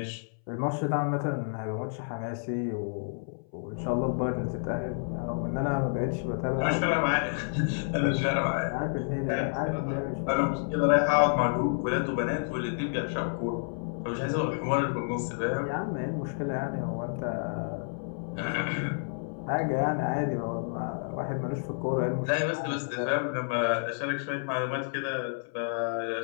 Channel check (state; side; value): silent; right; 58 dB below the other